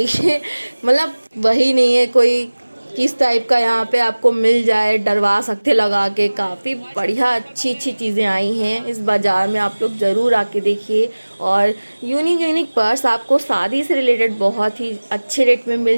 मतलब वही नहीं है कोई किस टाइप का यहाँ पे आपको मिल जाए, डरवा सकते लगा के। काफ़ी बढ़िया अच्छी अच्छी चीज़ें आई हैं इस बाज़ार में, आप लोग ज़रूर आके देखिए। और यूनिक यूनिक पर्स आपको शादी से रिलेटेड बहुत ही अच्छे रेट में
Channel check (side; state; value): both; inverted; correlation -1.00